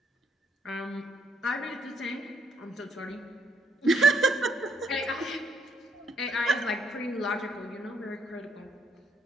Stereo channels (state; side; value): normal; both; correlation 0.72